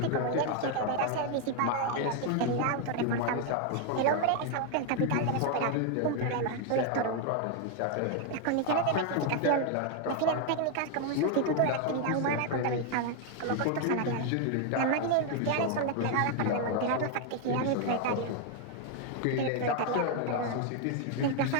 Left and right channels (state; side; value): different; both; correlation 0.01